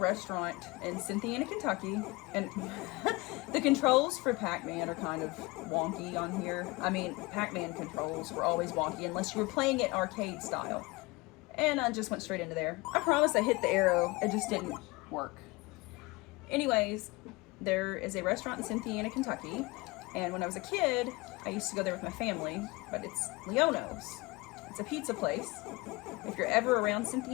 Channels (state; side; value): quieter; right; 23.6 dB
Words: in Cynthiana, Kentucky, and the controls for Pac-Man are kind of wonky on here. I mean, Pac-Man controls were always wonky unless you were playing it arcade style. And I just went straight into there. I promise I hit the arrow, it just didn't work. Anyways, there is a restaurant in Cynthiana, Kentucky, and when I was a kid, I used to go there with my family, but it's Leono's. It's a pizza place. If you're ever around